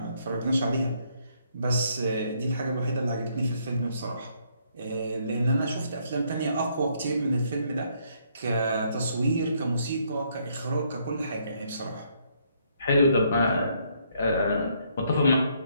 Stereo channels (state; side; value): inverted; both; correlation -0.70